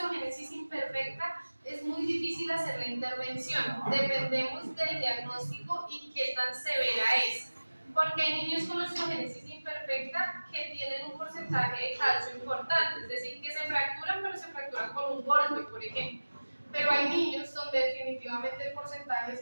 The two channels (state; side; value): inverted; both; correlation -1.00